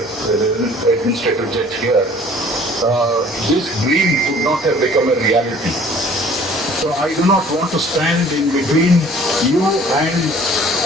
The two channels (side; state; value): both; normal; correlation 0.52